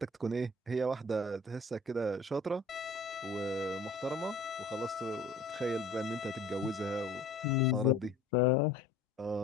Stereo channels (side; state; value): right; quieter; 3.0 dB